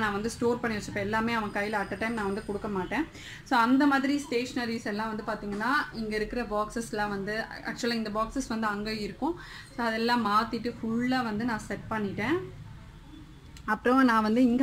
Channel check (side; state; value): both; identical; correlation 1.00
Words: நான் வந்து ஸ்டோர் பண்ணி வச்சுப்பேன். எல்லாமே அவன் கையில் அட் அ டைம் நான் வந்து கொடுக்க மாட்டேன். ஸோ அந்த மாதிரி ஸ்டேஷ்னரிஸ் எல்லாம் வந்து பார்த்திங்கன்னா இங்கே இருக்கிற பாக்ஸஸ்லாம் வந்து ஆக்சுவலாக இந்த பாக்ஸஸ் வந்து அங்கே இருக்கும். ஸோ அதெல்லாம் மாற்றிட்டு ஃபுல்லாக வந்து நான் செட் பண்ணிட்டேன். அப்புறம் நான் வந்து